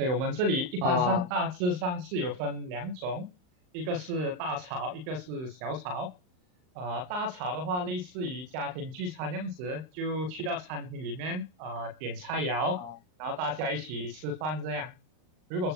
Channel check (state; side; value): late; left; 39 ms